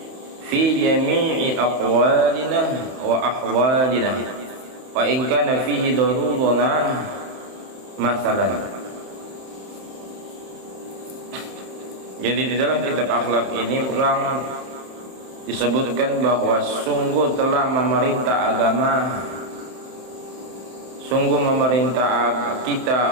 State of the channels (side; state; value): left; late; 31 ms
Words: fi jami'i aqwalina wa ahwalina wa in kana fihi daruruna masalan. Jadi di dalam kitab akhlak ini ulang disebutkan bahwa sungguh telah memerintah agama, sungguh memerintah